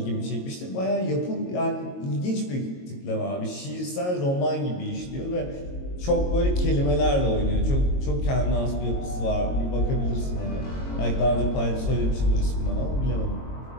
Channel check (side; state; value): right; late; 22 ms